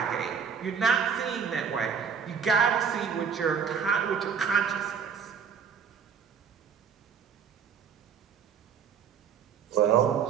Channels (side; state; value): left; quieter; 6.9 dB